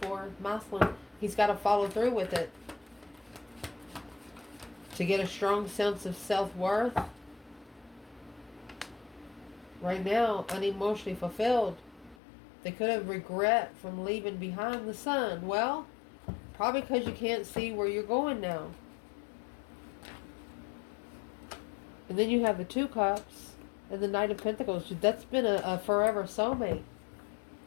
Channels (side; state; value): right; drops out; at 12.2 s